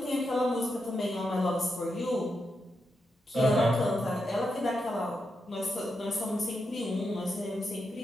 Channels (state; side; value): normal; both; correlation 0.85